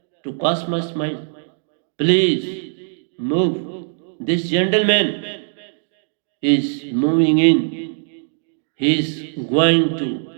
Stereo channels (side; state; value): left; silent; digital silence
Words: to cosmos mind. Please move. This gentleman is moving in. He is going